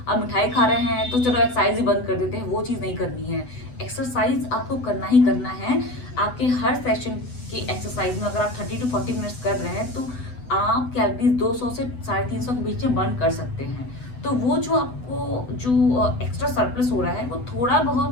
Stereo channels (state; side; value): late; right; 8.0 ms